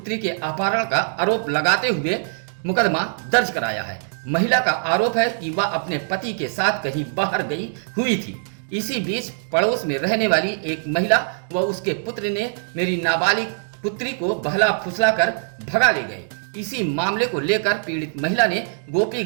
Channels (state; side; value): silent; left; digital silence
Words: के अपहरण का आरोप लगाते हुए मुकदमा दर्ज कराया है। महिला का आरोप है कि वह अपने पति के साथ कहीं बाहर गई हुई थी। इसी बीच पड़ोस में रहने वाली एक महिला व उसके पुत्र ने मेरी नाबालिग पुत्री को बहला फुसला कर भगा ले गए। इसी मामले को लेकर पीड़ित महिला ने